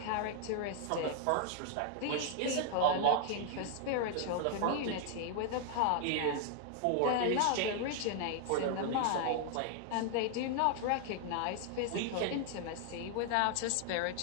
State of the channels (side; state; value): both; different; correlation 0.00